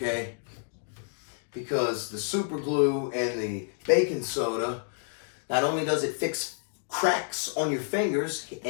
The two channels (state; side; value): silent; right; digital silence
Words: Because the super glue and the baking soda, not only does it fix cracks on your fingers